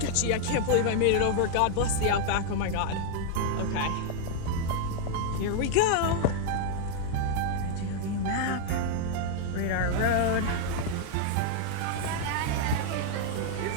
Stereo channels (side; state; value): both; different; correlation 0.00